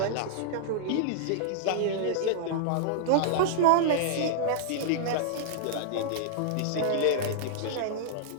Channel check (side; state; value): both; different; correlation -0.01